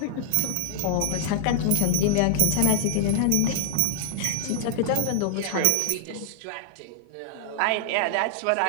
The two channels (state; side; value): different; both; correlation 0.00